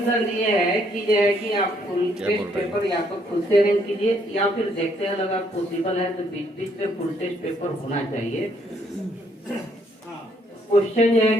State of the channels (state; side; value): normal; both; correlation 0.69